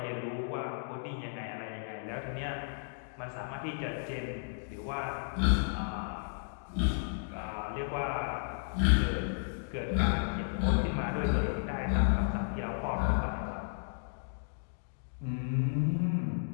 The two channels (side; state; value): right; silent; digital silence